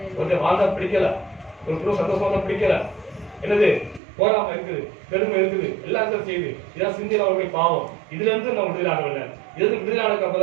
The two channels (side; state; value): left; drops out; at 4.0 s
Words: கொஞ்சம் வாழ்ந்தா பிடிக்கல, ஒரு குடும்பம் சந்தோஷமா பிடிக்கல, என்னது போராம இருக்குது, பெருமை இருக்குது, எல்லாத்தையும் செய்யுது. இதான் சிந்தையில அவருடைய பாவம். இதுல இருந்து நம்ம விடுதலை ஆகவில்லை. இது விடுதலை ஆனதுக்கு